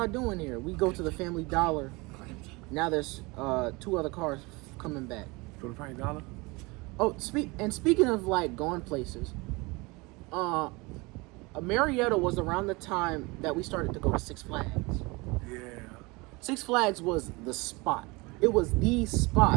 doing here? We go to the Family Dollar. Now there's 2 other cars coming back. For the Frank Dollar? Oh, speaking of like going places, Marietta was around the time that we started to go to Six Flags. Yeah. Six Flags was the spot. It was the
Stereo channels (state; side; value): quieter; left; 25.3 dB